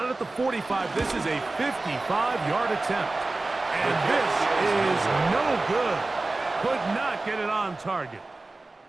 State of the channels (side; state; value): left; quieter; 3.2 dB